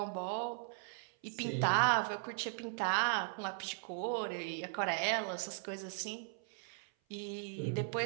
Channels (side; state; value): left; silent; 52 dB below the other